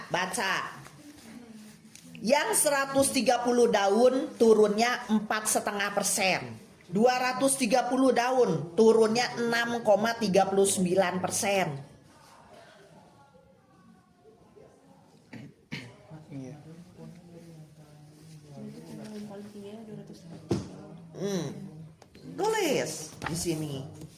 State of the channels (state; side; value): identical; both; correlation 1.00